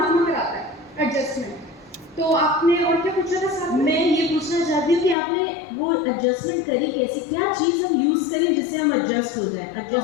कराता है एडजस्टमेंट। तो आपने और क्या पूछा था साहब? मैं ये पूछना चाहती हूँ कि आपने वो एडजस्टमेंट करी कैसे? क्या चीज़ हम यूज़ करें जिससे हम एडजस्ट हो जाए?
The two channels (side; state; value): right; drops out; at 5.2 s